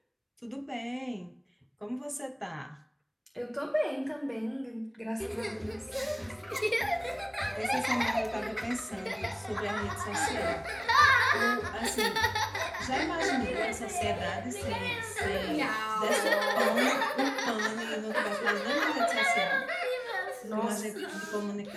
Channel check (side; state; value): both; identical; correlation 1.00